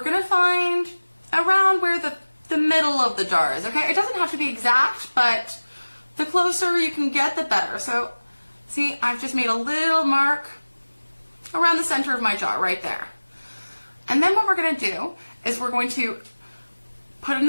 going to find around where the middle of the jar is, okay? It doesn't have to be exact, but the closer you can get, the better. So, see, I've just made a little mark around the center of my jar, right there. And then what we're going to do is we're going to put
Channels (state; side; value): inverted; both; correlation -1.00